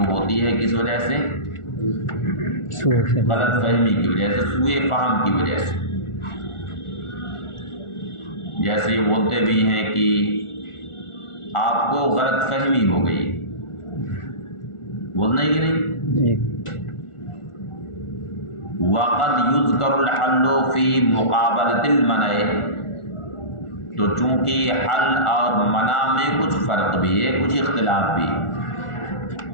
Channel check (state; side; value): late; right; 1.4 ms